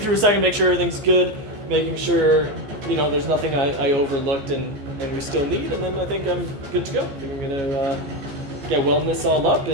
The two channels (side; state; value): left; late; 15 ms